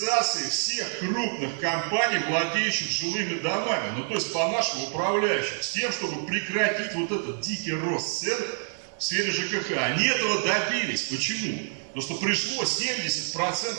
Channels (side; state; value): left; silent; 60 dB below the other